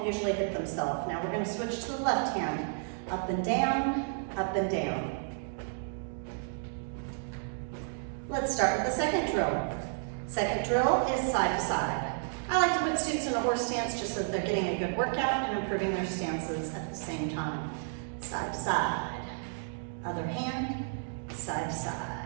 usually hit themselves. Now we're going to switch to the left hand. Up and down, up and down. Let's start with the second drill. Second drill is side to side. I like to put students in a horse stance just so that they're getting a good workout and improving their stances at the same time. Side to side. Other hand, side to side.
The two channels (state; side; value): silent; left; digital silence